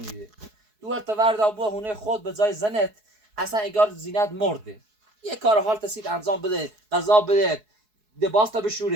دوورت تا ورد آبوه هونه خود به جای زنت اصلا اگر زینت مرده یه کار حال تسید انجام بده غذا بده دباس تا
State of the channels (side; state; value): left; late; 4.7 ms